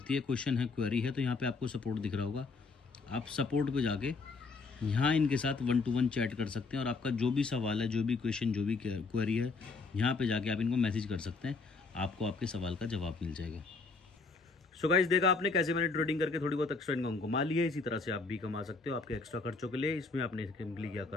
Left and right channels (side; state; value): right; quieter; 4.2 dB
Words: है, क्वेश्चन है, क्वेरी है, तो यहाँ पे आपको सपोर्ट दिख रहा होगा। आप सपोर्ट पे जाके यहाँ इनके साथ 1-to-1 चैट कर सकते हैं। और आपका जो भी सवाल है, जो भी क्वेश्चन, जो भी क्वेरी है, यहाँ पे जाके आप इनको मैसेज कर सकते हैं, आपको आपके सवाल का जवाब मिल जाएगा। सो गाइस देखा आपने कैसे मैंने ट्रेडिंग करके थोड़ी बहुत एक्स्ट्रा इनकम कमा ली है। इसी तरह से आप भी कमा सकते हो आपके एक्स्ट्रा खर्चों के लिए। इसमें आपने सिंपली क्या